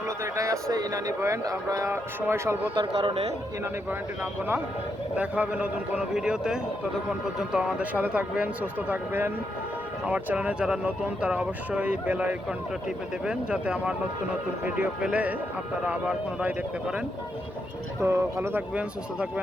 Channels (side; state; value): both; normal; correlation 0.81